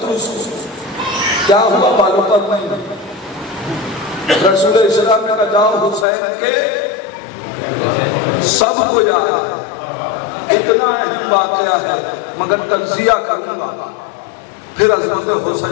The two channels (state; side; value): drops out; right; at 6.1 s